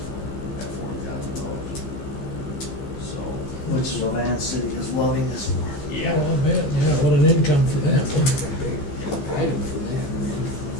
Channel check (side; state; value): right; late; 14 ms